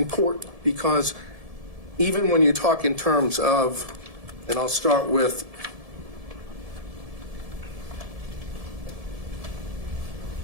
because even when you talk in terms of, and I'll start with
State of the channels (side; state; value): left; late; 1.7 ms